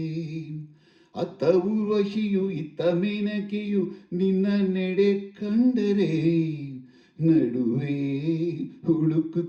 ಅತ್ತ ಊರ್ವಶಿಯು ಇತ್ತ ಮೇನಕೆಯು ನಿನ್ನ ನೆಡೆ ಕಂಡರೆ, ನಡುವೆ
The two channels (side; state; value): both; identical; correlation 1.00